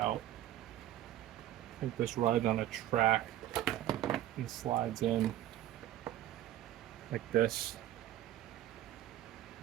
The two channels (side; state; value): left; quieter; 13.1 dB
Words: I think this rides on a track and slides in like this.